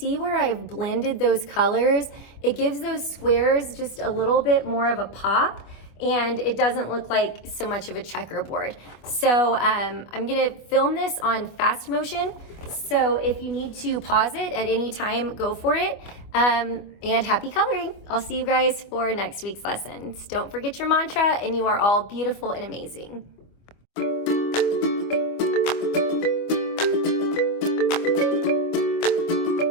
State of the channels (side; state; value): right; late; 25 ms